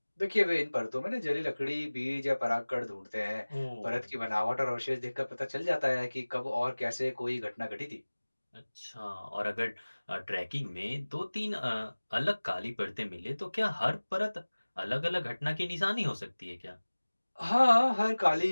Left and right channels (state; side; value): inverted; both; correlation -1.00